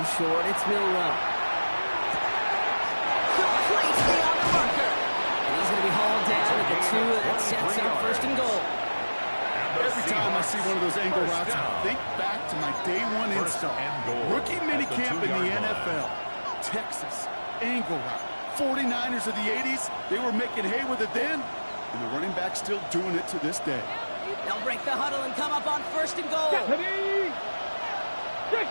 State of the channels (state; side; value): inverted; both; correlation -1.00